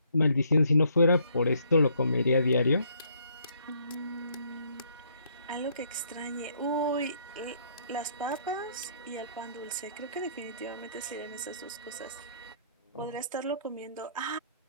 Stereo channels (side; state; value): both; inverted; correlation -0.67